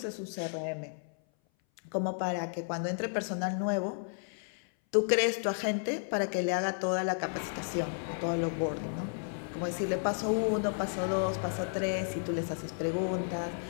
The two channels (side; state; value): right; silent; 56 dB below the other